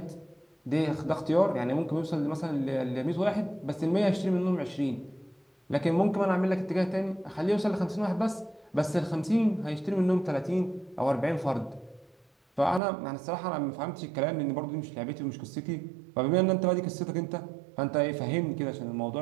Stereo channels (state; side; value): drops out; left; at 12.8 s